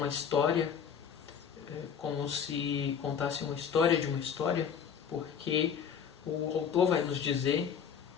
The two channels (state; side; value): quieter; right; 7.5 dB